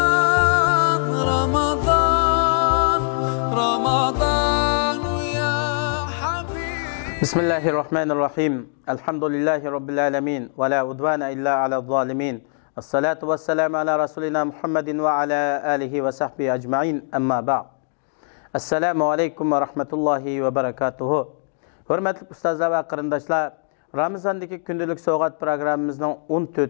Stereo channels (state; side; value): silent; right; digital silence